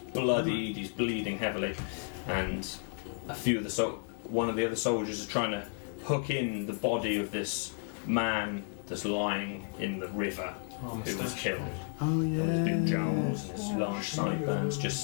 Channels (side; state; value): right; silent; 56 dB below the other